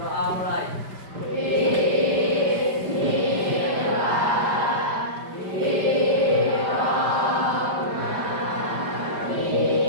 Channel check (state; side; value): late; left; 5.1 ms